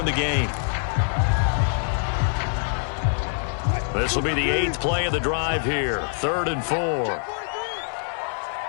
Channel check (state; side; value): silent; right; 60 dB below the other